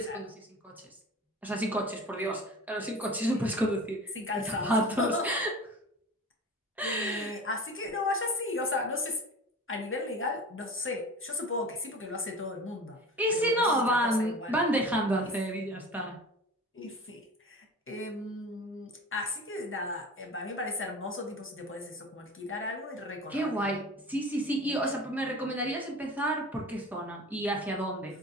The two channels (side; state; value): both; normal; correlation 0.36